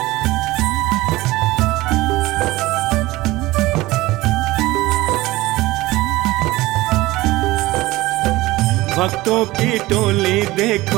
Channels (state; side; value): quieter; left; 18.9 dB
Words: भक्तों की टोली